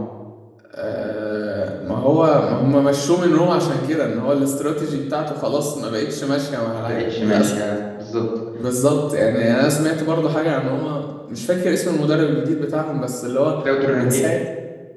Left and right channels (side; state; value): both; identical; correlation 1.00